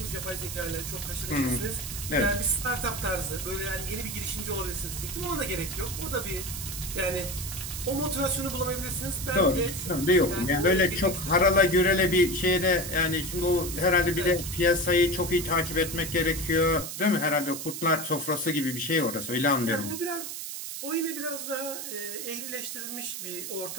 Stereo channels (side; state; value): right; noise; hiss, 7 dB below the sound